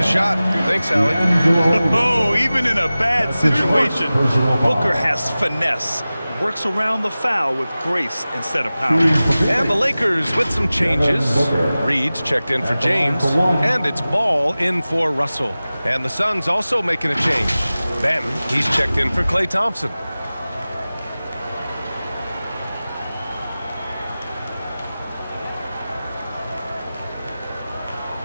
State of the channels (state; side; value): inverted; both; correlation -0.97